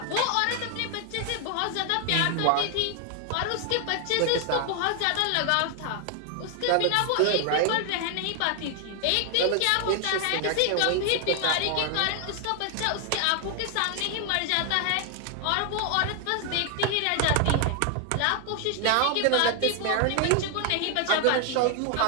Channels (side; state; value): both; different; correlation 0.00